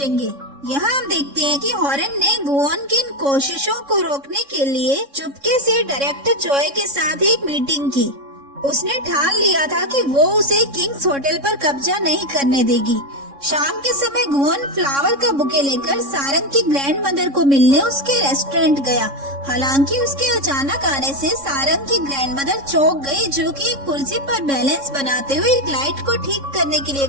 यहाँ हम देखते हैं कि हॉरेन ने गुवोन की इन कोशिशों को रोकने के लिए चुपके से डायरेक्टर जॉय के साथ एक मीटिंग की। उसने ठान लिया था कि वो उसे किंग्स होटल पर कब्जा नहीं करने देगी। शाम के समय गुवोन फ्लावर का बुके लेकर सारंग की ग्रैंड मदर को मिलने उसके रेस्टोरेंट गया। हालांकि उसके अचानक आने से सारंग की ग्रैंड मदर चौंक गई, जो कि एक कुर्सी पर बैलेंस बनाते हुए एक लाइट को ठीक करने के लिए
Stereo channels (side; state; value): left; late; 3.6 ms